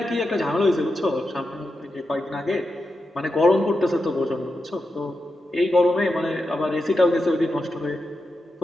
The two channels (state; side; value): normal; both; correlation 0.88